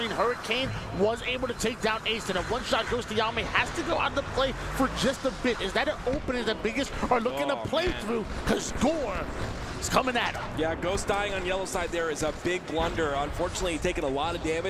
Hurricane was able to take down Ace, and a one-shot Ghost Yami has to go out of the play for just a bit. Is that an opening that Biggest are looking to play through? Because Gore is coming at him. Yeah, Ghost dying on yellow side there is a big blunder. Unfortunately, he's taking a lot of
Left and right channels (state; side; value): identical; both; correlation 1.00